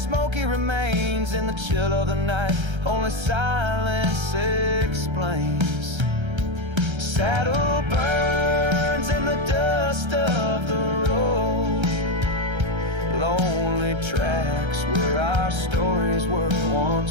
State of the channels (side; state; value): left; late; 1.3 ms